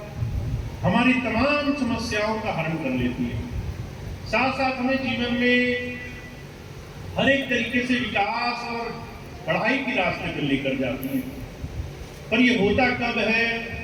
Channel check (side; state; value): both; identical; correlation 1.00